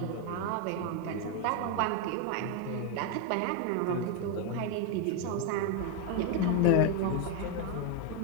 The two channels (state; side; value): different; both; correlation 0.02